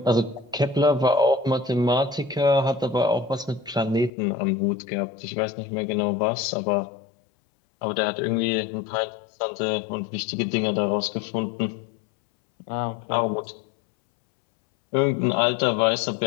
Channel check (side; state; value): right; drops out; at 4.1 s